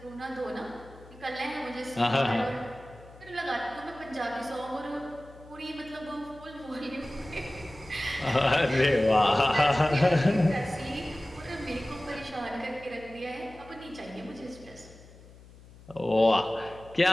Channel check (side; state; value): left; noise; hum, 21 dB below the sound